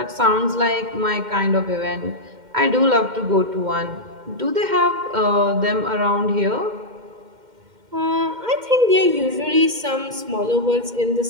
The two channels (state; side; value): late; left; 2.1 ms